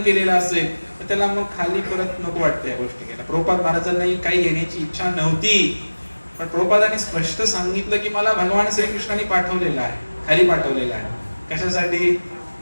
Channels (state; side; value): inverted; both; correlation -1.00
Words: केलेलं असेल तर त्याला मग खाली परत नको वाटतं या गोष्टी घ्यायला. प्रभुपाद महाराजांनाही काही घेण्याची इच्छा नव्हती, पण प्रभुपादांनी स्पष्ट सांगितलं की मला भगवान श्रीकृष्णाने पाठवलेलं आहे, खाली पाठवलेलं आहे. कशासाठी?